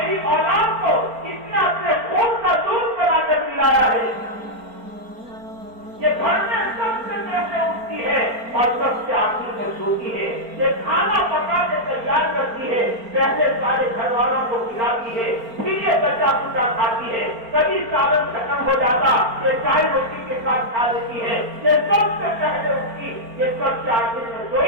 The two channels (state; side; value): late; left; 4.4 ms